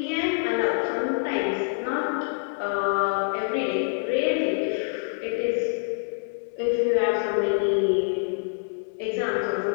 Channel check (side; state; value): right; silent; digital silence